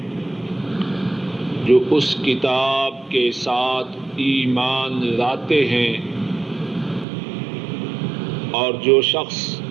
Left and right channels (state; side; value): drops out; left; at 7.1 s